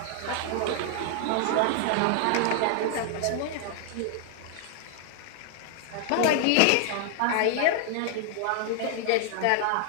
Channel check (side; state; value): both; different; correlation 0.00